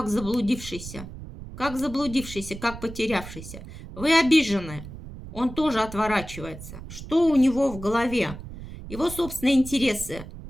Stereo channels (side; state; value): right; noise; rumble, 12 dB below the sound